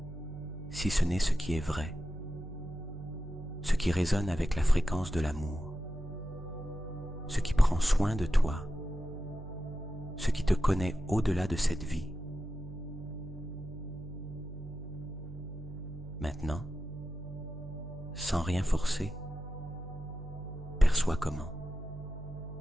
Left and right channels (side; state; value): right; noise; hum, 12 dB below the sound